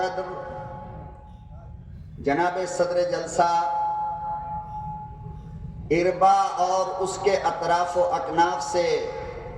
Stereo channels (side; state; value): both; identical; correlation 1.00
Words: جناب صدر جلسہ اربا اور اس کے اطراف و اکناف سے